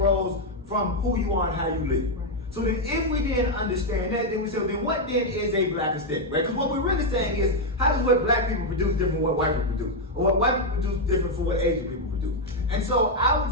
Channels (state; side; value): normal; both; correlation 0.02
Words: from who you are and how you live. So then if we then understand that, then we say, well, then what then is a Black aesthetic, right? Because what we're really saying is, how does what Black people produce different from what white people produce? Or what white people produce different from what Asian people produce? And so I